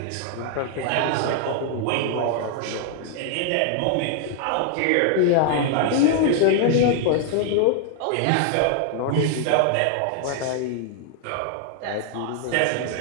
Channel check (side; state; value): both; different; correlation 0.00